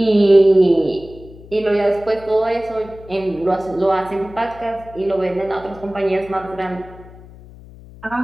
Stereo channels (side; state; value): left; noise; hum, 20 dB below the sound